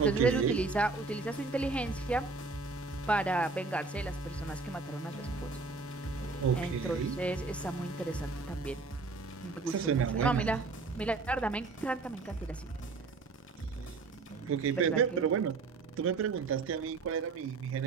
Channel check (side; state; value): left; quieter; 4.0 dB